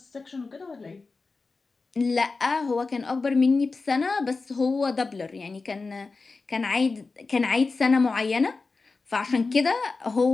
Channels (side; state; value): right; quieter; 4.0 dB